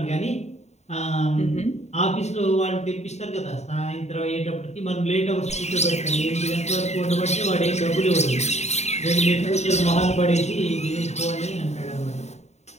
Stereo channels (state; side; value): late; right; 0.32 ms